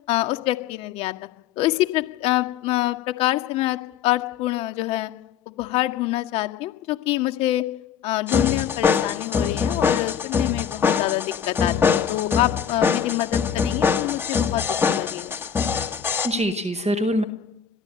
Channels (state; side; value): quieter; right; 8.2 dB